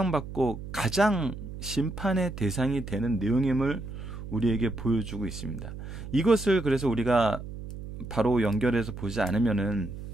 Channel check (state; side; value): noise; right; hum, 10 dB below the sound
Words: 가장 심판의 대상이 되는 내용임을 우리에게 보여주고 있습니다. 이것을 그래서 우리가 바로 연결해서 보지 않으면은